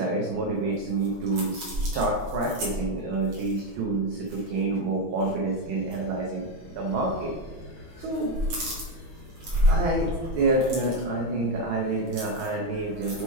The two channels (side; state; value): left; late; 6.2 ms